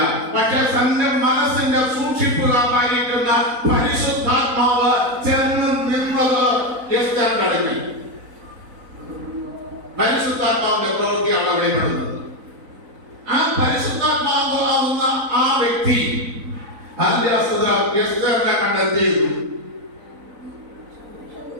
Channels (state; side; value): late; left; 4.0 ms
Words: പക്ഷെ തന്റെ മനസ്സിന്റെ സൂക്ഷിപ്പുകാരായിരിക്കുന്ന പരിശുദ്ധാത്മാവ് ചേർന്ന് നിന്നത് എസ്തേറിന്റെ അടുക്കൽ. പരിശുദ്ധാത്മാവിന്റെ പ്രവൃത്തിയാണ് വെളിപ്പെടുന്നത്. ആ പരിശുദ്ധാത്മാവാകുന്ന ആ വ്യക്തി എസ്തേറിനെ കണ്ടെത്തിയിരുന്നു.